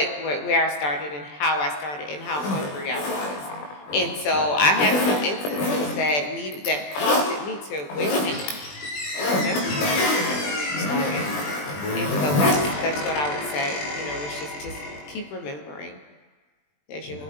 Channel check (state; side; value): late; right; 20 ms